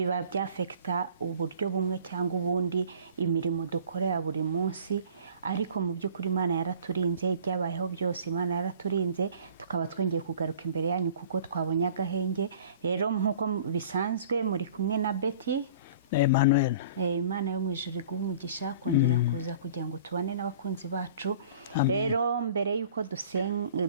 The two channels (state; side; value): inverted; both; correlation -0.47